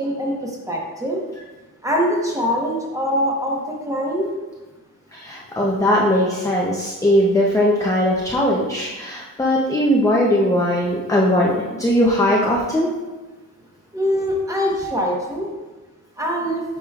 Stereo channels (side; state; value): both; normal; correlation 0.45